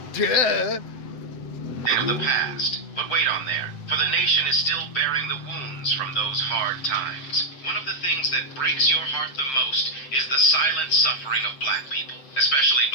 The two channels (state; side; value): late; right; 7.8 ms